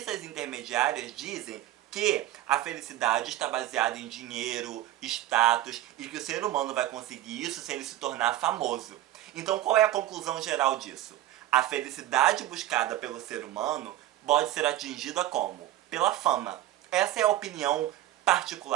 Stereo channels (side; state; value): left; quieter; 13.9 dB